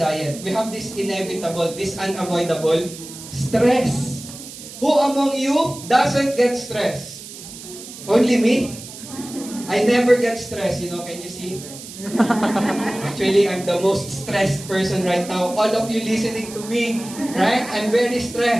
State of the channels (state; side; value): noise; right; hiss, 14 dB below the sound